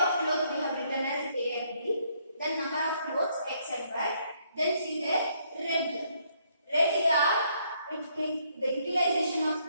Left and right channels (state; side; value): inverted; both; correlation -0.70